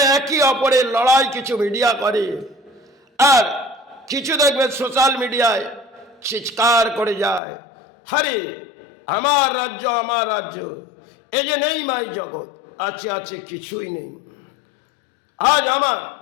একে অপরের লড়াই কিছু মিডিয়া করে, আর কিছু দেখবে সোশ্যাল মিডিয়ায় চিৎকার করে যায়, হরে আমার রাজ্য, আমার রাজ্য, এ যে নেই মাই জগৎ, আছে আছে কিছুই নেই। আজ আমার,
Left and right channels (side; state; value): right; drops out; at 7.4 s